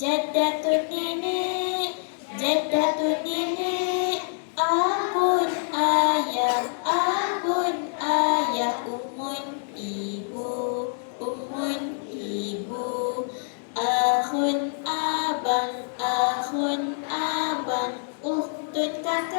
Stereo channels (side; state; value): right; silent; digital silence